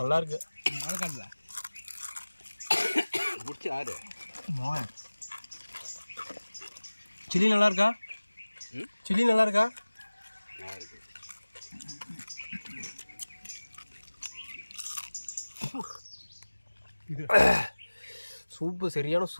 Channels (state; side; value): inverted; both; correlation -1.00